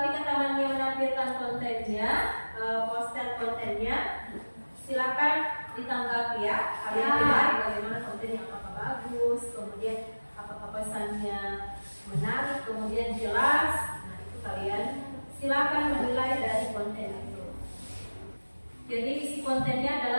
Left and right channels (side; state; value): both; inverted; correlation -1.00